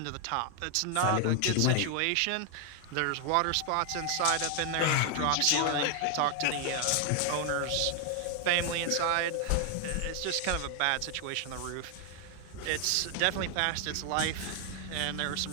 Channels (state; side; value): different; both; correlation 0.00